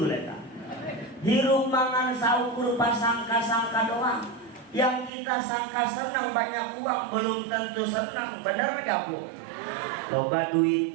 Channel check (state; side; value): drops out; left; at 5.1 s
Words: eta hirup mangan saukur pasangka-sangka doang yang kita sangka senang banyak uang belum tentu senang bener gak Bu? Loba